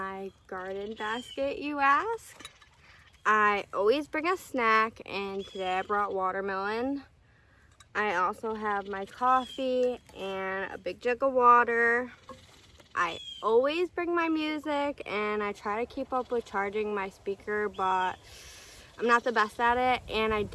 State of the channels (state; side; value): identical; both; correlation 1.00